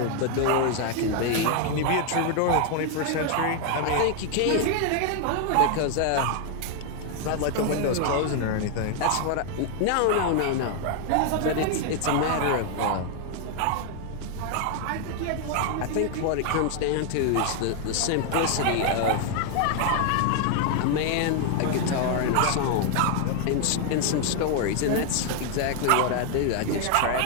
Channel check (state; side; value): different; both; correlation 0.00